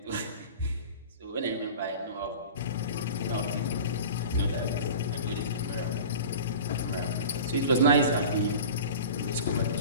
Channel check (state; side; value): inverted; both; correlation -0.36